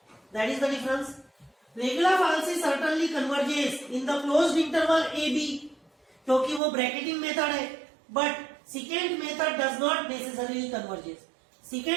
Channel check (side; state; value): left; drops out; at 6.6 s